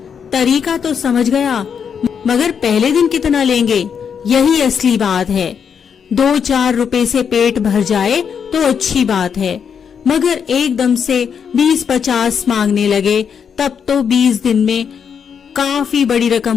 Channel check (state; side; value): quieter; right; 7.1 dB